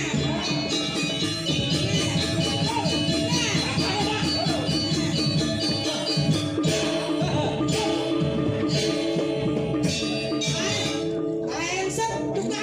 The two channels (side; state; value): both; identical; correlation 1.00